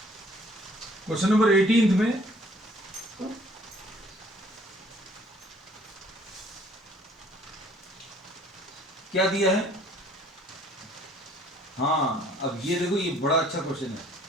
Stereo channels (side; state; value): both; normal; correlation 0.58